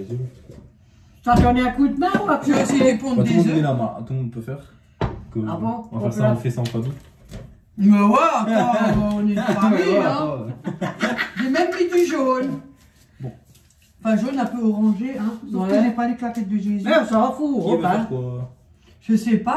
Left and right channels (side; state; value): both; identical; correlation 1.00